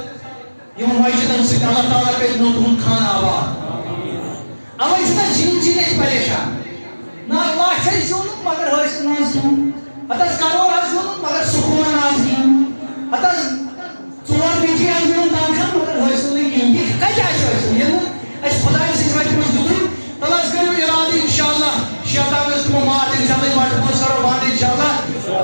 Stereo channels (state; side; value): inverted; both; correlation -1.00